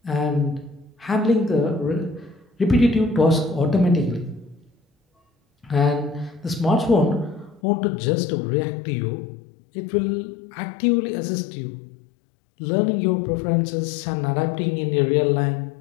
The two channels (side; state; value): right; drops out; at 7.6 s